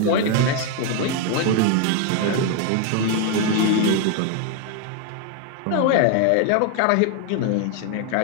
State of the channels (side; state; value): both; different; correlation 0.01